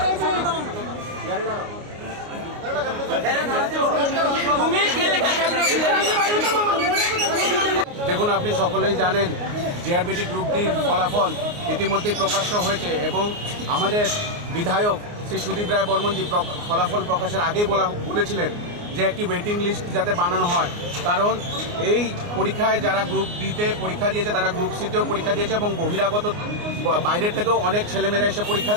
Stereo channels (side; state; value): left; late; 29 ms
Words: দেখুন, আপনি সকলেই জানেন জেআরবিটি গ্রুপ ডির ফলাফল ইতিমধ্যেই প্রকাশ্য হয়েছে এবং আমাদের বিধায়ক শ্রী সুদীপ রায় বর্মনজি ফলাফল প্রকাশের আগেই বলেছিলেন যে একটি ওয়েটিং লিস্ট যাতে বানানো হয়, কারণ এই পরীক্ষায় যারা গ্রুপ ডিতে পরীক্ষা দিয়েছে তারা গ্রুপ সিতেও পরীক্ষা দিয়েছে এবং বহিরাগত বাইরের থেকেও অনেক ছেলেমেয়েরা এসে পরীক্ষা